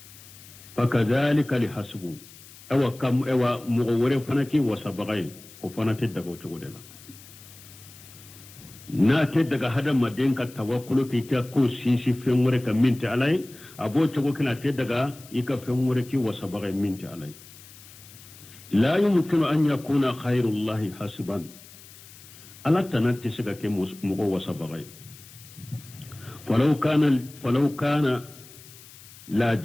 fa kadhalika li hasbu ewa mugo wore fanaki wasabagay ko fanate daga cogo de la na te daga hada madin ka tawakkulu ki ta ko sinsi fen wore ka minti alai abo cogo kana te daga ika fen wore ki wasabagay minti alai la yumkinu an yakuna khairullahi hasban ala tanatti siga ke mugo wasabagay falau kana la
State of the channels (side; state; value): left; noise; hiss, 20 dB below the sound